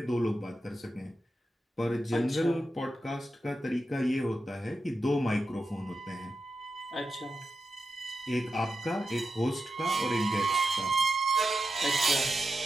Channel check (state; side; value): normal; both; correlation 0.89